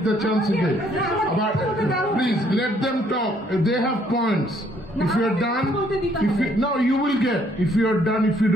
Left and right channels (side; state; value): both; normal; correlation 0.66